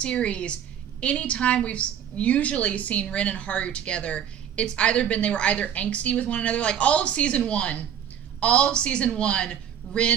anytime we've usually seen Rin and Haru together, it's either been they were either angsty with one another, like all of season one,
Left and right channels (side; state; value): left; quieter; 9.3 dB